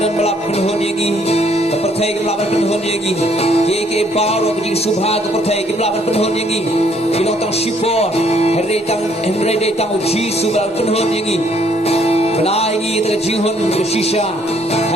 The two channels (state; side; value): normal; both; correlation 0.66